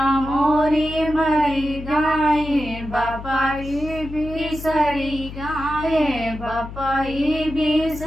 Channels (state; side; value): noise; left; hum, 11 dB below the sound